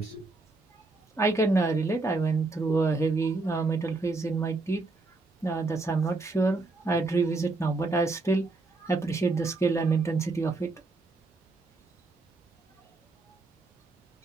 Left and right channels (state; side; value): quieter; left; 3.4 dB